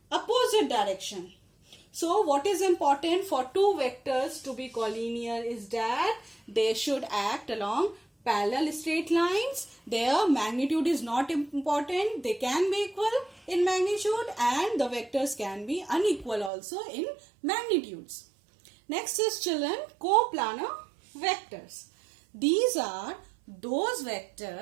opposite direction. So what is important for two vectors to be collinear is that they should act along parallel straight lines. Their magnitude is not important. They can be equal in magnitude and the vectors can be unequal also in magnitudes. Next is, children, coplanar vectors. These are those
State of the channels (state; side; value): drops out; left; at 16.5 s